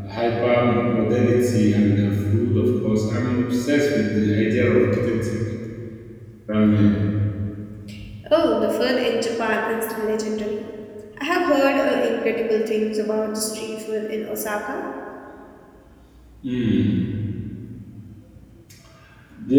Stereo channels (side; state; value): both; identical; correlation 1.00